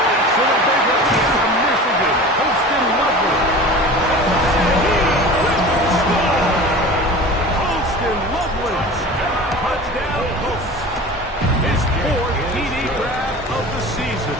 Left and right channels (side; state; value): both; normal; correlation 0.37